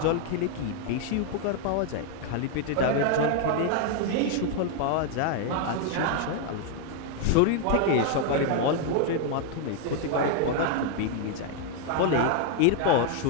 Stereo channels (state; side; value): different; both; correlation 0.00